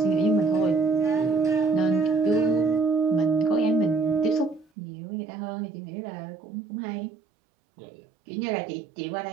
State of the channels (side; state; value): left; drops out; at 4.7 s